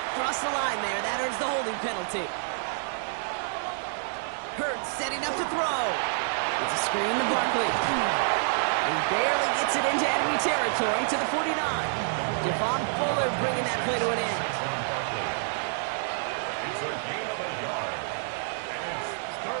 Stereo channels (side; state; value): left; silent; 59 dB below the other